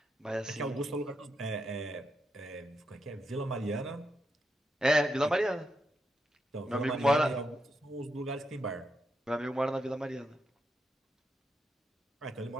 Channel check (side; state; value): both; normal; correlation 0.83